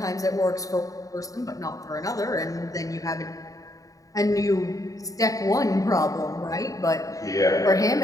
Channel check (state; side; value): late; right; 0.17 ms